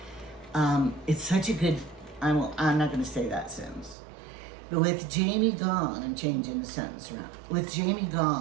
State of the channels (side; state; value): left; drops out; at 4.0 s